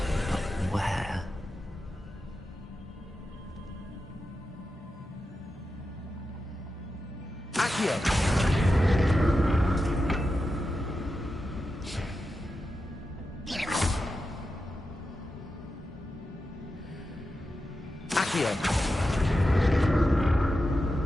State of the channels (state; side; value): normal; both; correlation 0.90